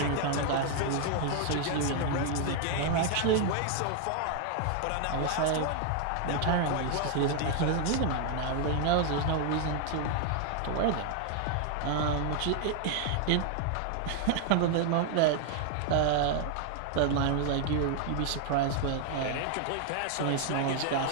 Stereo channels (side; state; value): both; different; correlation 0.00